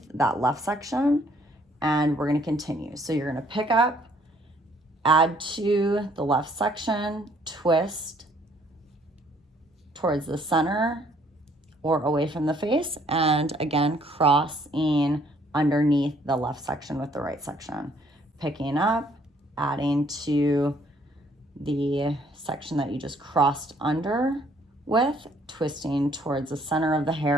that left section, and we're going to continue. So you're going to pick up, add to the left section, twist towards the center or away from the face, and again, crossing underneath the left section with the right section. Picking up, adding to the section that you just crossed under with, twisting towards the center of the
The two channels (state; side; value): normal; both; correlation 0.63